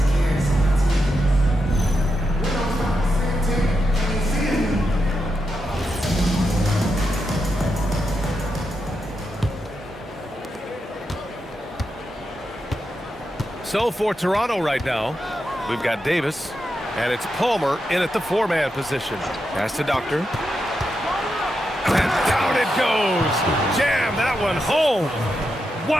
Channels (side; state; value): both; normal; correlation 0.86